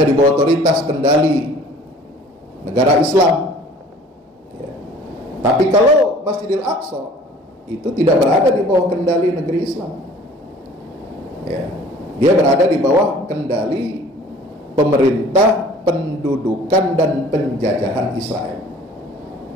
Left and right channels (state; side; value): normal; both; correlation 0.50